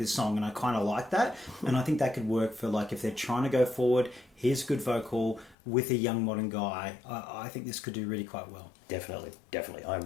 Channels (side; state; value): right; drops out; at 5.6 s